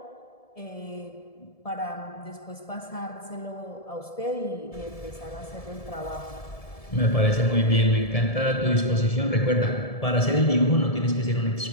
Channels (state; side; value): late; right; 1.7 ms